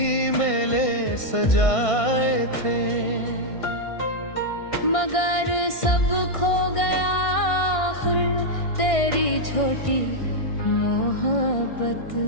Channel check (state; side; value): late; right; 1.6 ms